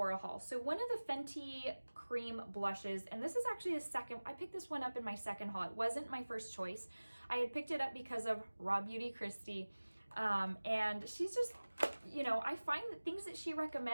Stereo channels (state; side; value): inverted; both; correlation -1.00